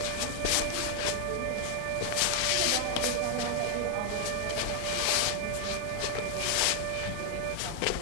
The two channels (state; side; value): different; both; correlation 0.00